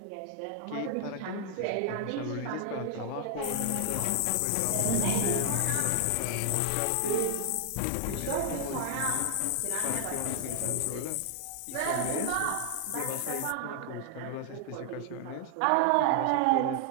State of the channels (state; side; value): different; both; correlation 0.00